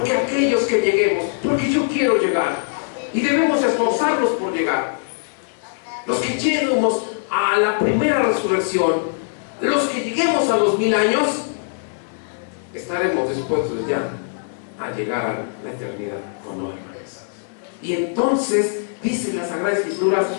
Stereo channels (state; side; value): silent; right; 65 dB below the other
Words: aquellos que lleguemos, porque yo quiero llegar, y debemos esforzarnos por llegar. Los que lleguemos a la primera resurrección, los que lleguemos a los 1000 años, estaremos dispuestos ya a llegar a la eternidad con no, hermanos. Y entonces dice la Sagrada Escrituras